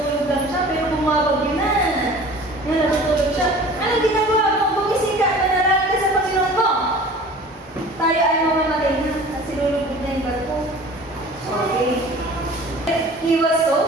lang siya, pero bumabagyo na. Yan, nasutulog siya. Anong ginagawa mo? Bumising ka, manalangin ka sa Panginoon mo. Tayo ay mamamatay na, at sinulugod na yung barko. Okay. He was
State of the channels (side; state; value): both; normal; correlation 0.44